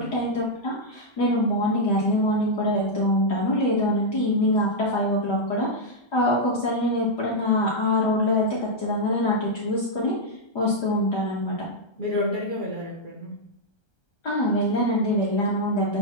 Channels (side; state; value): right; late; 1.3 ms